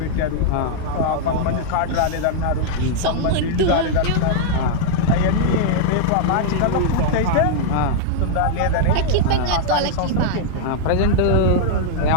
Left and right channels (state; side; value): different; both; correlation -0.01